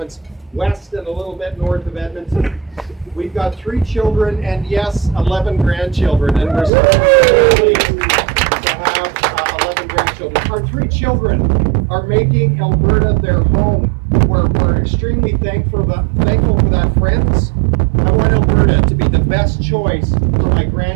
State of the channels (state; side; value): drops out; left; at 6.7 s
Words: west and a little bit north of Edmonton. We've got 3 children and, yes, 11 grandchildren, and we're so pleased to have 11 grandchildren. Our 3 children are making Alberta their home. We're extremely thankful for that, friends. I want Alberta to be the best choice for my